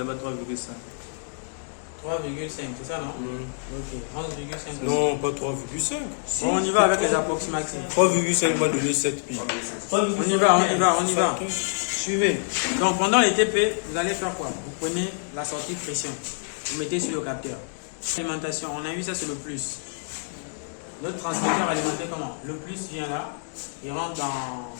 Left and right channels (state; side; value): silent; right; digital silence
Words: 3,5. 3,5, c'est ça, non? Ok, 11,5. Non, pas 3,5. Bon, on y va avec les approximatifs. 3,5 va donner 7 pi. On y va. Suivez. Donc, pendant les TP, vous allez faire quoi? Vous prenez la sortie de pression. Vous mettez sur le capteur. Alimentation, on a vu ça, c'est le plus. Le transmetteur alimenté comment? Le plus vient là, il rentre dans